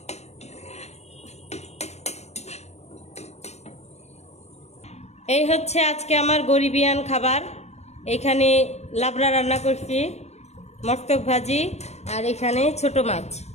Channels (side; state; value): right; late; 0.32 ms